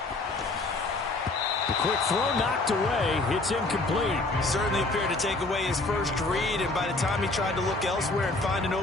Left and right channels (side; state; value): right; quieter; 3.1 dB